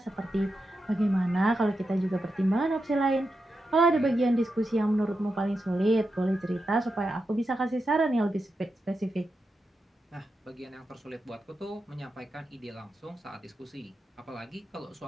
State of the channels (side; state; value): both; normal; correlation 0.88